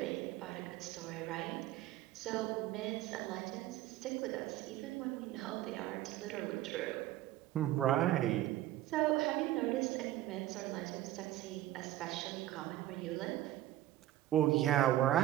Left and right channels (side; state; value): left; quieter; 14.4 dB